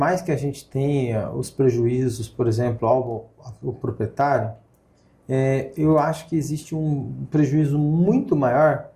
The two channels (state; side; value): identical; both; correlation 1.00